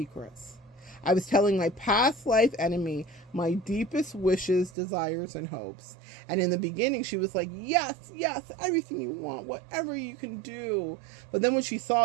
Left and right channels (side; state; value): left; drops out; at 4.7 s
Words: I was telling my past life enemy my deepest wishes, desires, and hopes. And in the beginning, she was like, yes, yes, everything you want, whatever you can do. But then when she